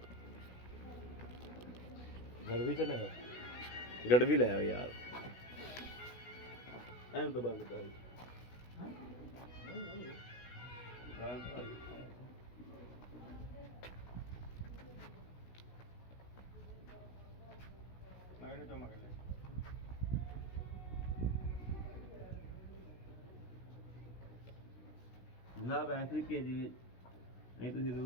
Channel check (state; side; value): late; right; 16 ms